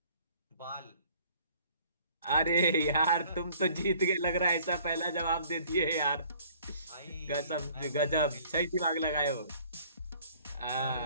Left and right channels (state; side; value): inverted; both; correlation -0.56